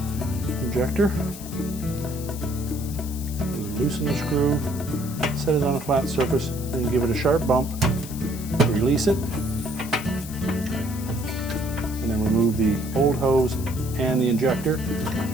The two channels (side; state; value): left; noise; hiss, 13 dB below the sound